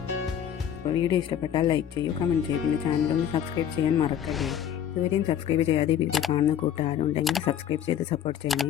അപ്പോൾ വീഡിയോ ഇഷ്ടപ്പെട്ടാൽ ലൈക്ക് ചെയ്യൂ, കമൻറ്റ് ചെയ്യൂ. പിന്നെ ചാനലൊന്ന് സബ്സ്ക്രൈബ് ചെയ്യാൻ മറക്കരുത്. ഇതുവരെയും സബ്സ്ക്രൈബ് ചെയ്യാതെ വീഡിയോ കാണുന്ന കൂട്ടുകാരുണ്ടെങ്കിൽ സബ്സ്ക്രൈബ് ചെയ്ത് സപ്പോർട്ട് ചെയ്യണേ.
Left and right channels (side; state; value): right; quieter; 9.6 dB